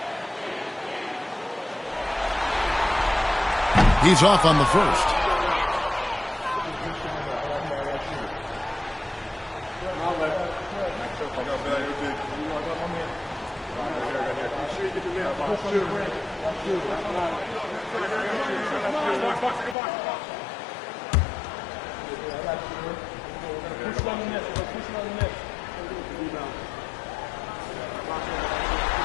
He's off on the first.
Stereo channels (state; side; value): drops out; right; at 19.8 s